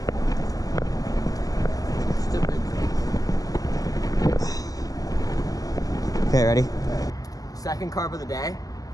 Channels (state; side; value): late; right; 0.17 ms